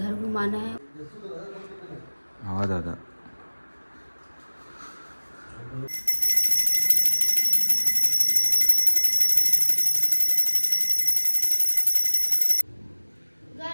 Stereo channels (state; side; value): inverted; both; correlation -1.00